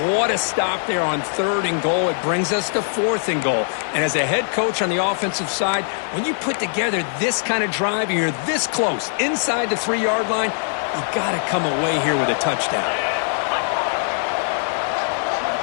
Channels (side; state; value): right; silent; digital silence